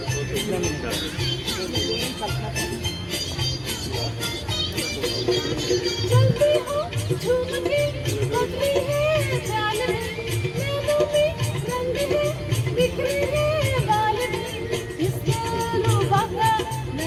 चलती हो झूम के बदली है चाल में, नैनों में रंग है बिखरे हैं बाल में, इसके रूबा का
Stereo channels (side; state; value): both; identical; correlation 1.00